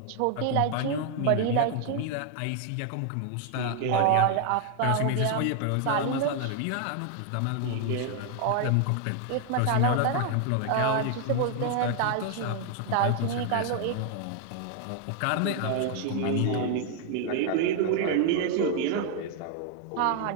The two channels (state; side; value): different; both; correlation 0.00